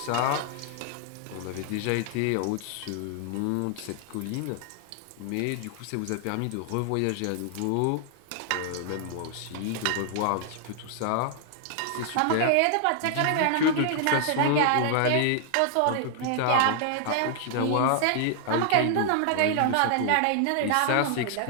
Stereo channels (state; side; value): different; both; correlation 0.00